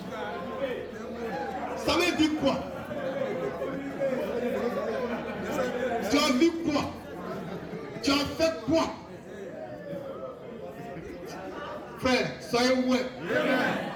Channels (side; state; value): both; identical; correlation 1.00